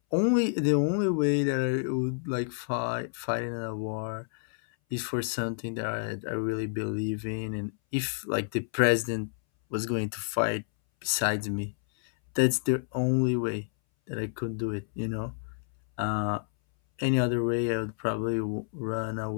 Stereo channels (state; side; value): silent; right; 58 dB below the other